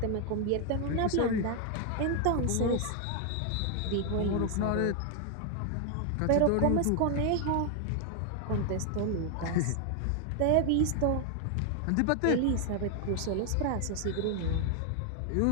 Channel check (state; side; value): different; both; correlation 0.00